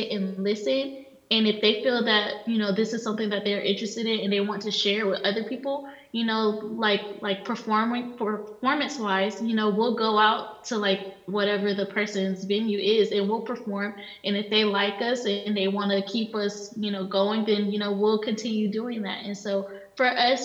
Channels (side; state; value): both; identical; correlation 1.00